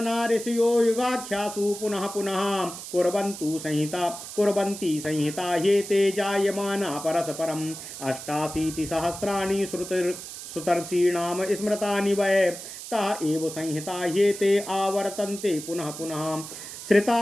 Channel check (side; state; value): right; noise; hiss, 11 dB below the sound